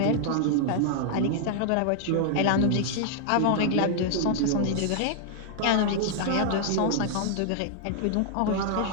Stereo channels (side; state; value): both; different; correlation -0.01